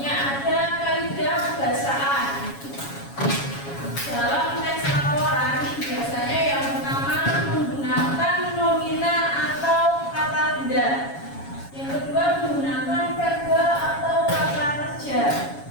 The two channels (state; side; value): late; right; 7.2 ms